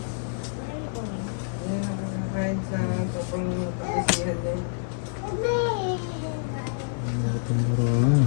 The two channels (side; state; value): right; silent; 60 dB below the other